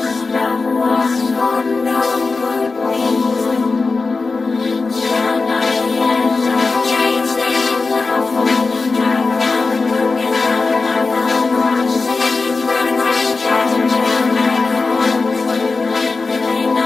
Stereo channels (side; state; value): right; quieter; 4.0 dB